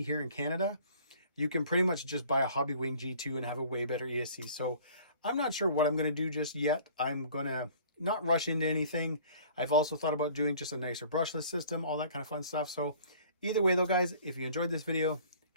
here in Canada, you can pretty much just buy a Hobby Wing G2 and have a way better ESC. So I'm not sure what I'm going to do just yet. I'm going to not rush into anything. I've also thought about doing just a nicer brushless system, all that kind of fun stuff. So either way though, guys, if you enjoyed this video,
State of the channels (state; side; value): inverted; both; correlation -0.51